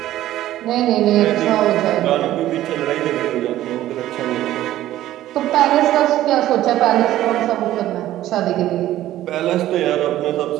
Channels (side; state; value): left; quieter; 13.9 dB